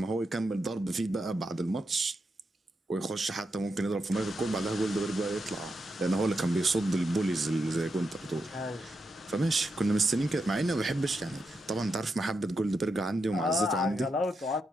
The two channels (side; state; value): both; normal; correlation 0.85